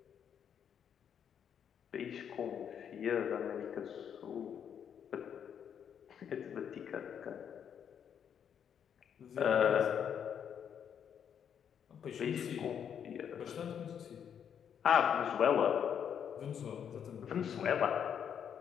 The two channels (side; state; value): right; quieter; 8.3 dB